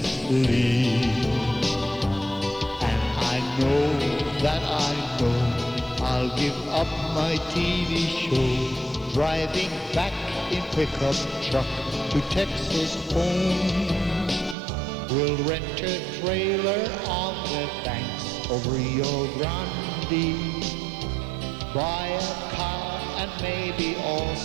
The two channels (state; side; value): drops out; left; at 14.6 s